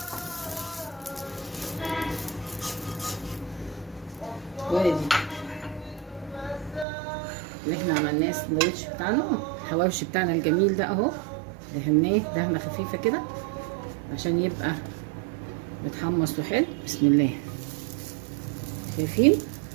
وادي اللي احنا عملناه السندوتش بتاعنا، الحواوشي بتاعنا الجميل ده اهو. دهناه دهنه خفيفه كده عشان يبقى متحمص وحلو. بسم الله. شايفين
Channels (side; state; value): left; drops out; at 6.9 s